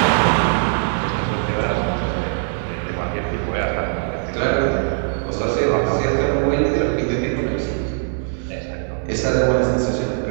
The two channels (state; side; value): silent; left; 58 dB below the other